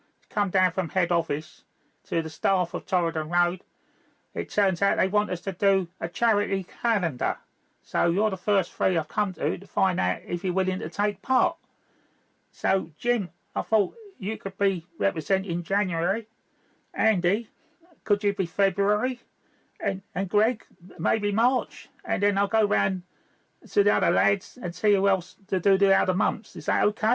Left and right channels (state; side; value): identical; both; correlation 1.00